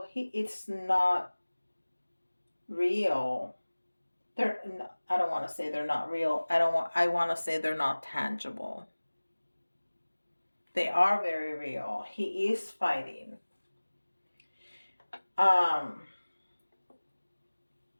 it's not real. I don't want to say they're not real. I want to say they're not tangible. They are very real. He is fighting.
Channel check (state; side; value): inverted; both; correlation -1.00